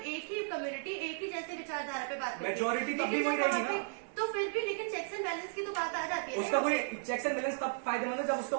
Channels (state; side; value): silent; left; 55 dB below the other